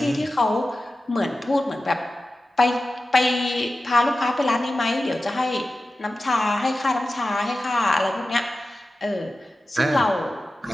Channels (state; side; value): normal; both; correlation 0.94